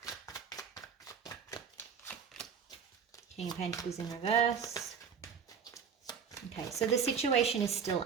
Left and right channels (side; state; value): left; quieter; 6.8 dB